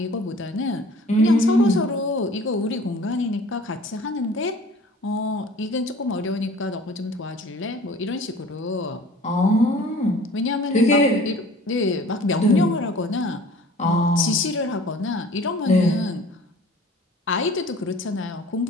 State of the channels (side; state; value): both; normal; correlation 0.47